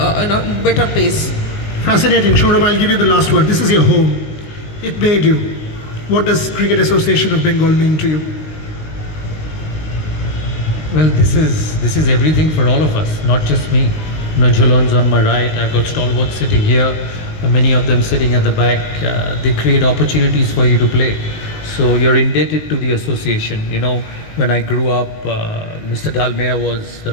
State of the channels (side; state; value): right; late; 19 ms